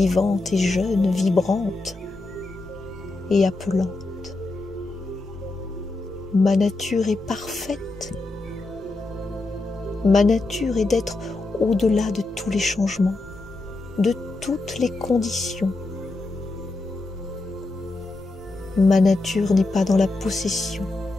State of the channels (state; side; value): quieter; right; 3.1 dB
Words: et jeune, vibrante et appelante. Ma nature est parfaite. Ma nature est d'être au-delà de tous les changements, de toutes les conditions. Ma nature n'est pas dans la possession,